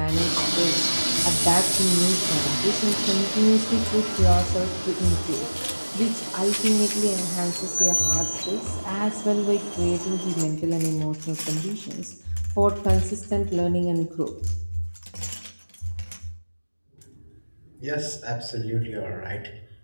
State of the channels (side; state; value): both; inverted; correlation -1.00